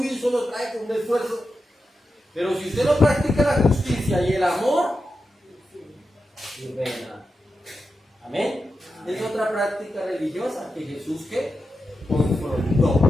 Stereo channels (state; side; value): normal; both; correlation 0.89